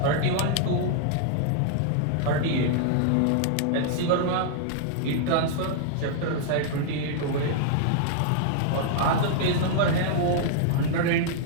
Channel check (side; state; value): both; different; correlation -0.01